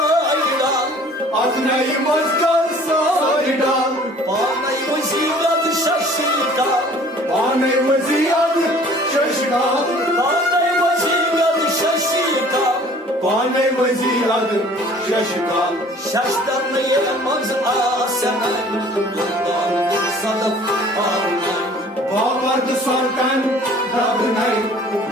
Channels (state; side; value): normal; both; correlation 0.51